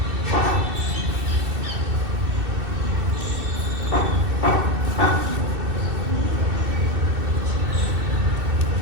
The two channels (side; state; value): left; late; 2.6 ms